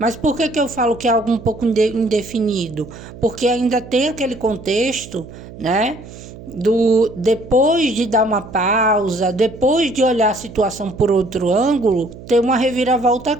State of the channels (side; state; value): right; noise; hum, 16 dB below the sound